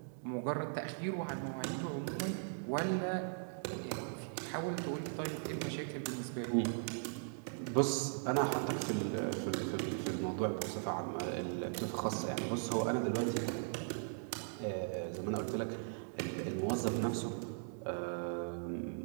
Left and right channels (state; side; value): silent; left; digital silence